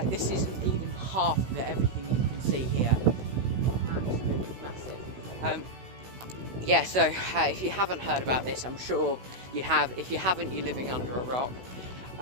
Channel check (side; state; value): left; late; 16 ms